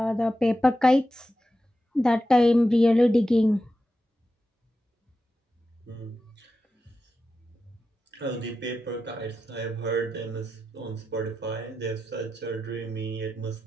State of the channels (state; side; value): normal; both; correlation 0.90